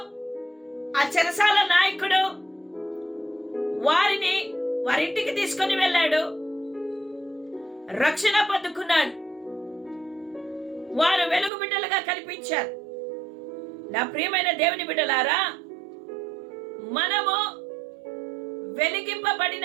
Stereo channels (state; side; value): drops out; left; at 11.5 s